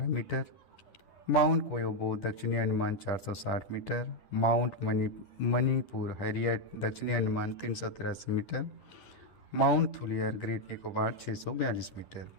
मीटर, माउंट कोयोबो दक्षिणी Andaman 460 metre, Mount Manipur Harriet दक्षिणी Andaman 383 metre, Mount Thuillier Great Nicobar 642 metre.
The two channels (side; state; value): right; late; 10 ms